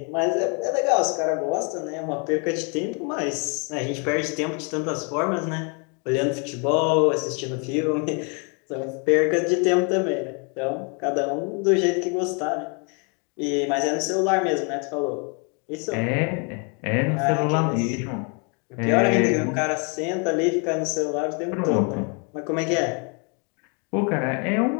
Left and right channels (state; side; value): quieter; right; 35.6 dB